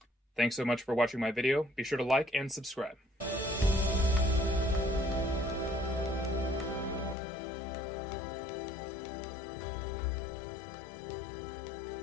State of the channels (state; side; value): drops out; right; at 7.2 s